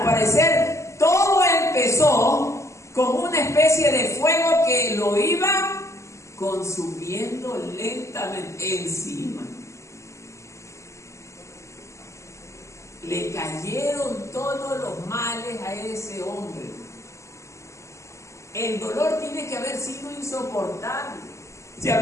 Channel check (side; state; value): right; late; 0.14 ms